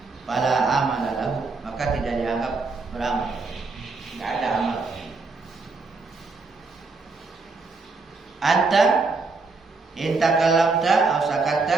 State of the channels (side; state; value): left; quieter; 4.0 dB